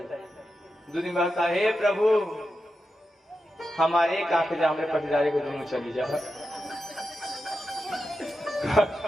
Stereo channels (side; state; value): both; normal; correlation 0.89